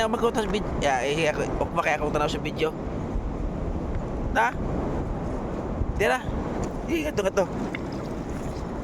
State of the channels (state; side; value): identical; both; correlation 1.00